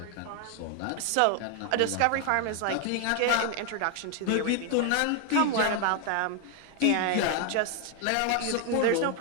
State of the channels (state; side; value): different; both; correlation 0.00